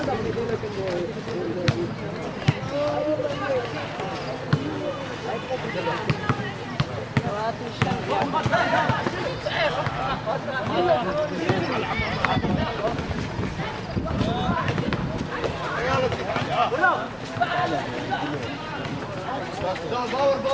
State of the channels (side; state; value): both; identical; correlation 1.00